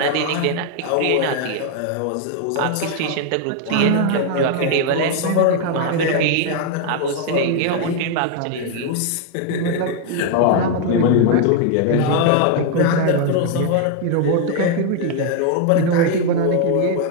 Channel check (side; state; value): both; different; correlation 0.00